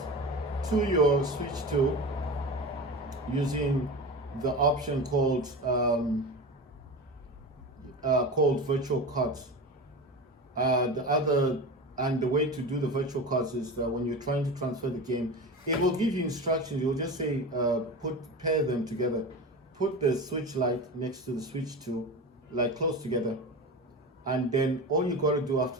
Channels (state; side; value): normal; both; correlation 0.27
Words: to your Switch 2 using the option called virtual cards. The way to do the virtual cards is that when you're trying to transfer the game, it will give you instructions. It will just say pair them together. Put the Switch Lite next to the Switch 2, like close together, and then all you got to do